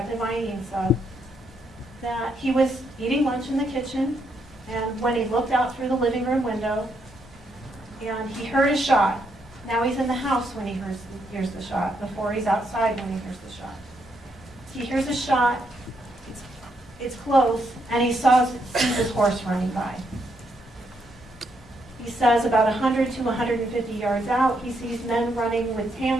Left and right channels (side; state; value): both; normal; correlation 0.77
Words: Ainsa that he was eating lunch in the kitchen, and when he looked out through the living room window, and he heard a shot. Now he's in the house when he hears the shot, before he's outside when he hears the shot. He hears a shot, it's close, and he sees his horse running by. He says about 100 to 150 yards out, he sees men running with